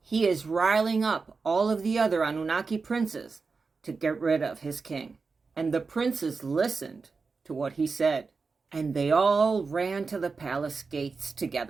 He is riling up all of the other Anunnaki princes to get rid of his king. And the princes listened to what he said. And they all ran to the palace gates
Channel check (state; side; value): quieter; left; 4.5 dB